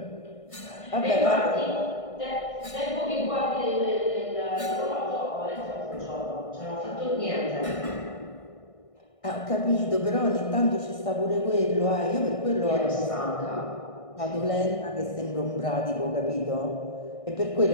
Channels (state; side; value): late; right; 1.6 ms